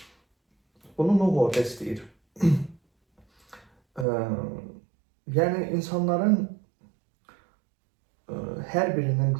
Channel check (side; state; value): left; drops out; at 4.0 s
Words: Bunu Nuh orada istəyir. Yəni insanların hər birinin